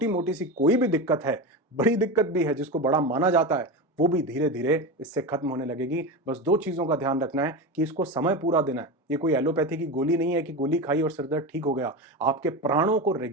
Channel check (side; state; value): both; normal; correlation 0.21